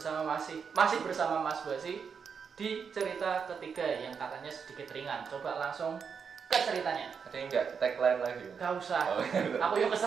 masih bersama Mas Basi di cerita ketiga yang katanya sedikit ringan. Coba langsung ke ceritanya. Ada yang enggak tagline lagi? Gak usah. Oh, Aku yang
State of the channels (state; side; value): quieter; left; 6.3 dB